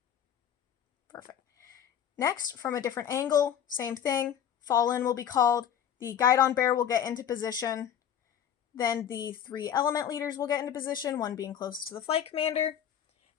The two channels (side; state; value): right; quieter; 9.2 dB